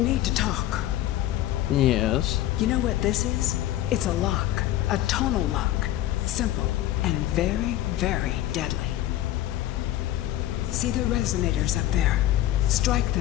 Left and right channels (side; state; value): right; quieter; 13.7 dB